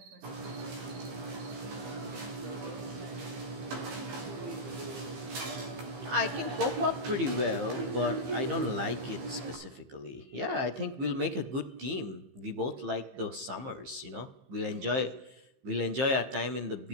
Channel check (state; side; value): late; left; 15 ms